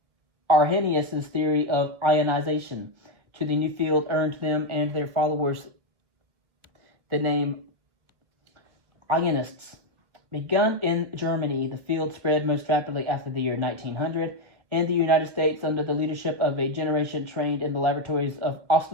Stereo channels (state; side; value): late; left; 1.8 ms